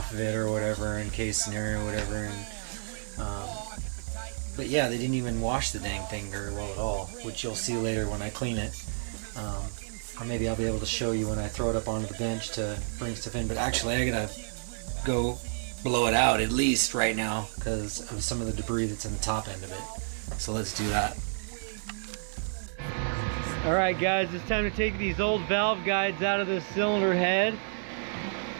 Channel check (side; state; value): left; silent; 58 dB below the other